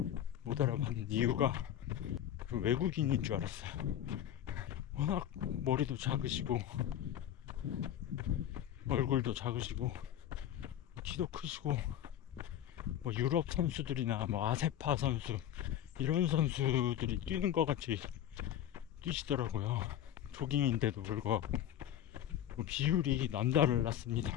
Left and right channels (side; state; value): right; quieter; 11.0 dB